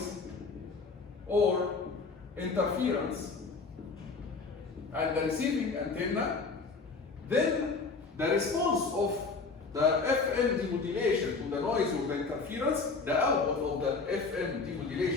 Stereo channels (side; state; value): right; quieter; 4.3 dB